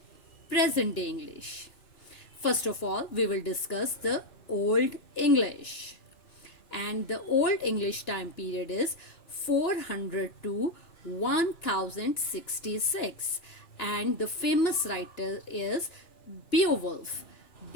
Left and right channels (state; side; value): late; right; 2.9 ms